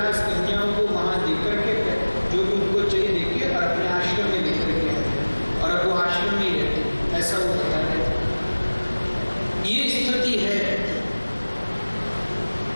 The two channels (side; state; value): both; inverted; correlation -1.00